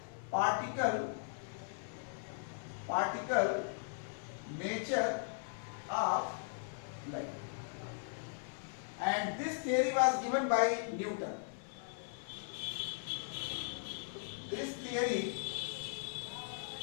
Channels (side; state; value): right; silent; 52 dB below the other